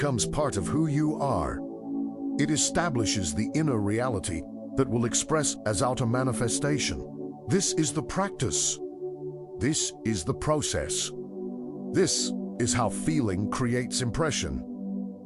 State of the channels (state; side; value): identical; both; correlation 1.00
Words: part of who you are. It establishes the inner reality that will express as outer manifestation. This is the practice. This is the process. This is how feeling creates impression.